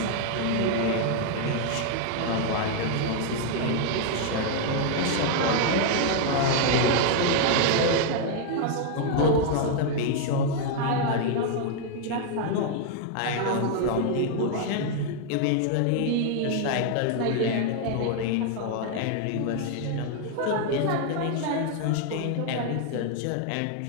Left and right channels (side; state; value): both; different; correlation 0.00